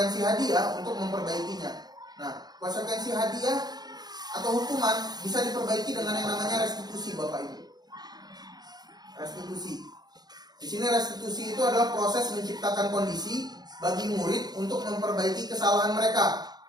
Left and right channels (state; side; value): late; left; 0.19 ms